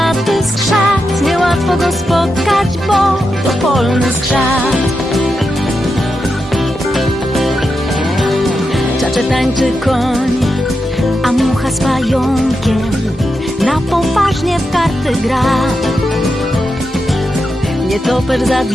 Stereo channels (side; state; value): both; normal; correlation 0.87